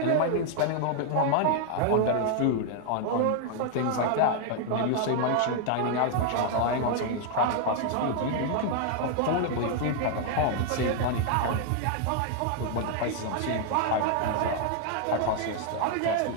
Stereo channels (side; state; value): both; different; correlation 0.00